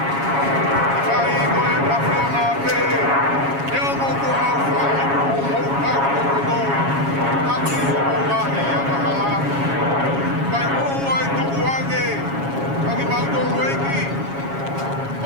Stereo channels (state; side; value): late; left; 7.3 ms